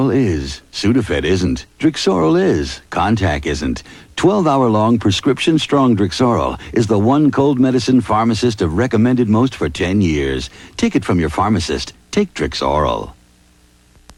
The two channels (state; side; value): identical; both; correlation 1.00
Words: is. Sudafed isn't. Drixoral is. Contac isn't. 12-hour-long prescription-strong Drixoral is the one cold medicine pharmacists have recommended most for 10 years. Take it from your pharmacist. Take Drixoral.